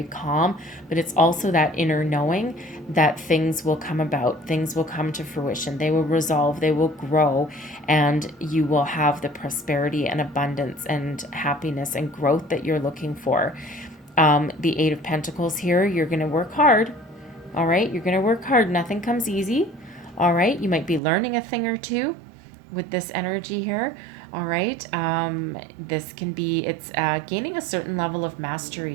calm, but it's also that inner knowing that things will come about, things will come to fruition, they will resolve, they will grow, and you will have the prosperity and abundance and happiness and growth that you're looking for. The 8 of Pentacles here, you're going to work hard. All right, you're going to work hard. Nothing comes easy. All right, you might be learning a thing or two with this energy here. All right, this can be, it's gaining a certain level of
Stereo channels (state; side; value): drops out; left; at 21.0 s